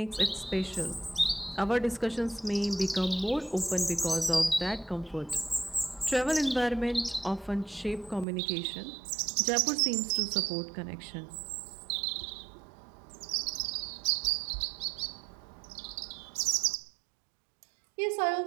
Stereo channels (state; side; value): drops out; left; at 8.2 s